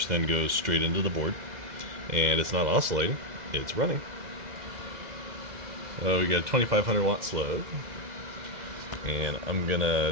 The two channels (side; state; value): left; late; 2.0 ms